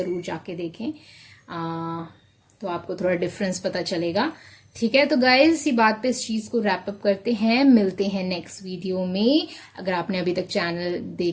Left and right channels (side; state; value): both; identical; correlation 1.00